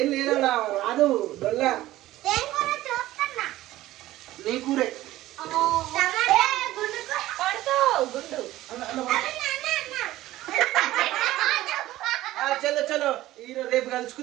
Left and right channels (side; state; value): left; quieter; 15.7 dB